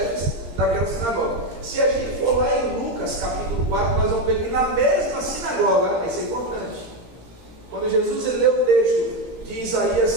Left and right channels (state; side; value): late; left; 18 ms